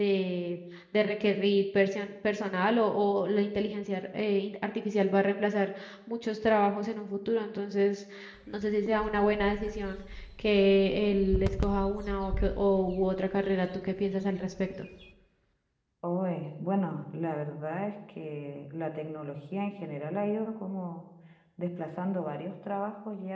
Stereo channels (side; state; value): both; identical; correlation 1.00